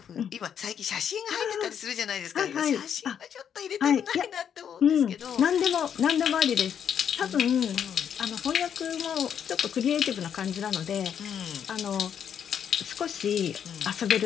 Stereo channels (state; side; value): quieter; right; 8.4 dB